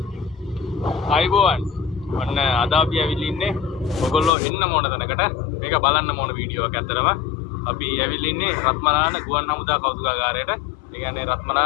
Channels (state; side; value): drops out; right; at 4.3 s